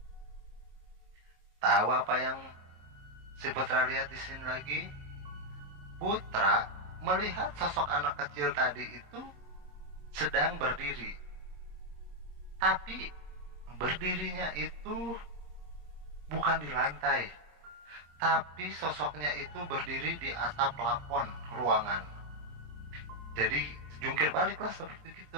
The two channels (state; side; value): late; left; 27 ms